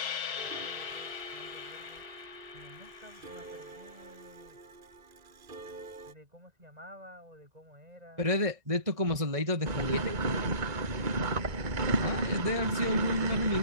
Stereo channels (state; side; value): late; left; 2.0 ms